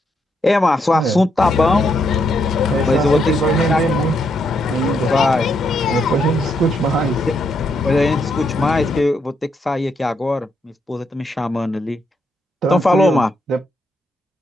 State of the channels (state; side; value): normal; both; correlation 0.77